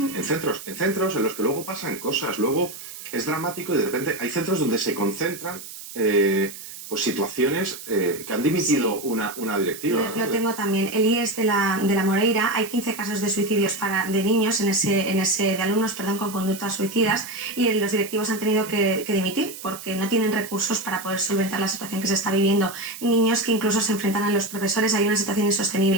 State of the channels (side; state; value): right; noise; hiss, 13 dB below the sound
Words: centros en los que luego pasan cosas, luego es dramático y de repente hay centros donde se concentran pues situaciones que han dimitido una directiva. Lo tengo también. El IES de la Moreira, hay 15 casos de suicidios de niños, de alumnos, con conductas suicidas, y los directivos han tenido que dimitir porque no tienen recursos para poder solventar la situación que se está viviendo. Niños que incluso se enfrentan a los profesores, hay una situación